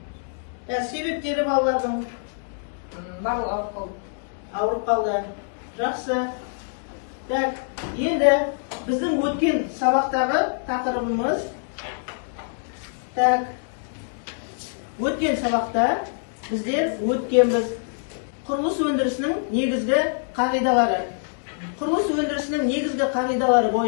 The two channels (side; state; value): right; silent; digital silence